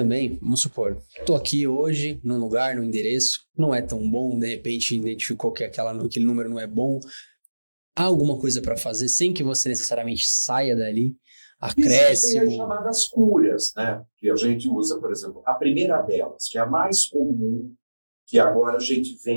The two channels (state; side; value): inverted; both; correlation -1.00